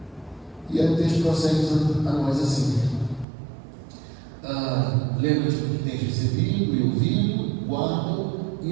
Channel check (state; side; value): drops out; left; at 3.2 s